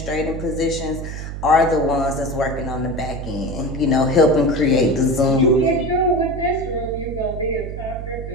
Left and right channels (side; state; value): right; noise; hum, 7 dB below the sound